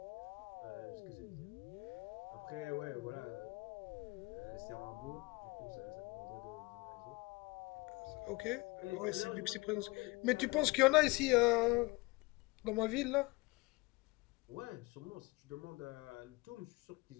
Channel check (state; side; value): quieter; right; 24.8 dB